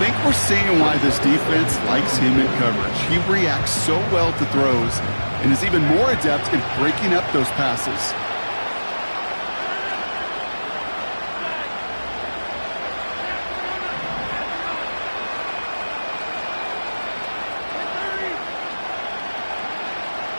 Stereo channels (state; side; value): inverted; both; correlation -1.00